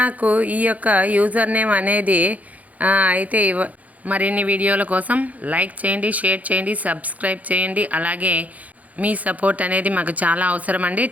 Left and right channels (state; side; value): late; left; 0.074 ms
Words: ఈ యొక్క యూజర్ నేమ్ అనేది అయితే మరిన్ని వీడియోల కోసం లైక్ చేయండి, షేర్ చేయండి, సబ్స్క్రైబ్ చేయండి. అలాగే మీ సపోర్ట్ అనేది మాకు చాలా అవసరం అండి.